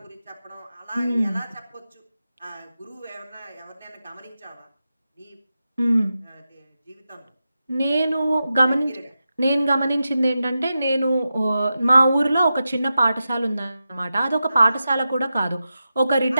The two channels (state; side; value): inverted; both; correlation -0.91